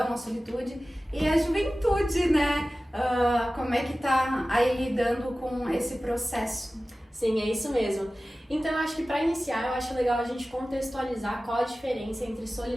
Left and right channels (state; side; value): normal; both; correlation 0.96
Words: a solitude, e a juventude, né, como é que tá aí lidando com esse processo. Sim, é isso mesmo. Então, eu acho que para iniciar, eu acho legal a gente contextualizar qual a diferença entre